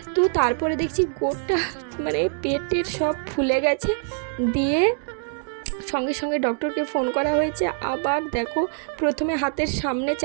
তো তারপরে দেখছি গোটা মানে পেটের সব ফুলে গেছে। দিয়ে সঙ্গে সঙ্গে ডক্টরকে ফোন করা হয়েছে। আবার দেখো, প্রথমে হাতের সামনে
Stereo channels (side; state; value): left; silent; 62 dB below the other